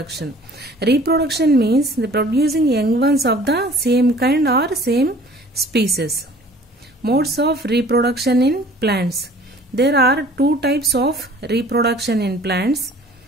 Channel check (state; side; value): normal; both; correlation 0.50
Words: Reproduction means the producing young ones of the same kind or same species. Modes of reproduction in plants. There are two types of reproduction in plants: